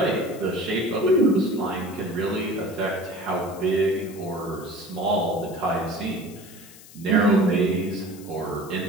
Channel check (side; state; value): left; noise; hiss, 20 dB below the sound